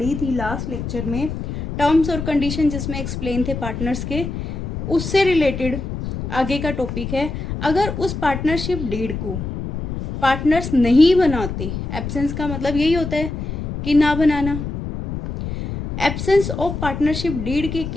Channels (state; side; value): noise; left; rumble, 6 dB below the sound